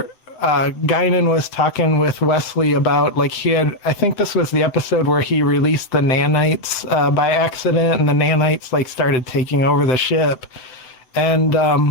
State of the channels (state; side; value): late; right; 7.8 ms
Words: Guinan was talking with Wesley about, like, I think this was the episode where he released the nanites by accident, and the nanites like started taking over the ship.